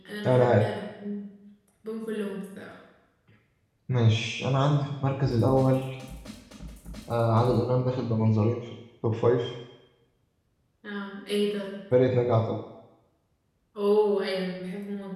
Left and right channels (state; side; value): identical; both; correlation 1.00